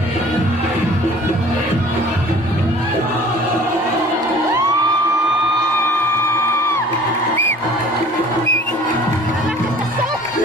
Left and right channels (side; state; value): both; normal; correlation 0.49